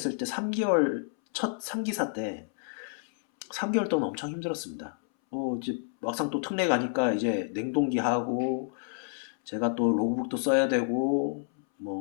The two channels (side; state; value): right; silent; 58 dB below the other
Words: 때 3개월 첫 3기사 때 3개월 동안 엄청 힘들었습니다. 이제 막상 또 특례 가니까 이제 냉동기 하고 제가 또 로그북도 써야 되고